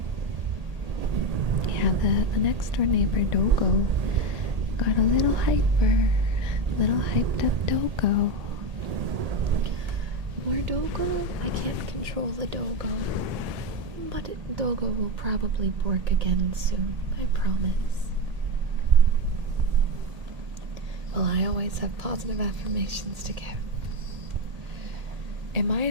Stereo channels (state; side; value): late; left; 1.8 ms